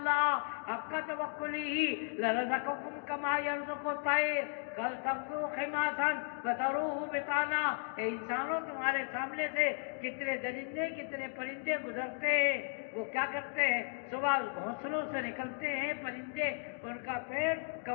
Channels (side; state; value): right; silent; 54 dB below the other